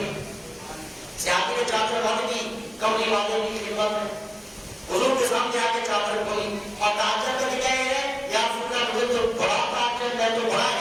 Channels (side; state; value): both; identical; correlation 1.00